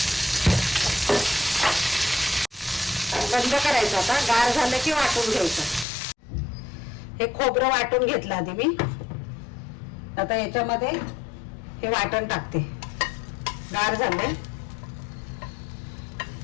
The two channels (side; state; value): right; drops out; at 5.9 s